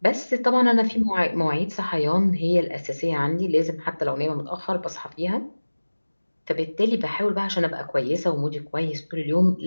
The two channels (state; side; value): inverted; both; correlation -1.00